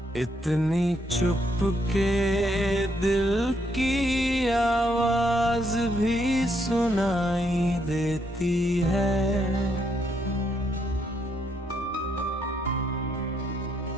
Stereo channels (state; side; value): normal; both; correlation 0.75